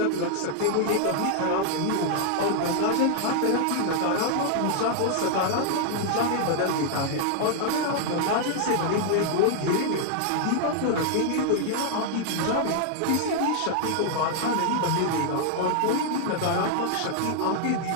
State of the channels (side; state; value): both; different; correlation 0.00